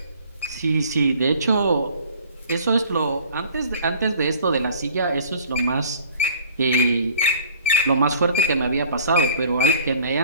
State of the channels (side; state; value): both; inverted; correlation -0.50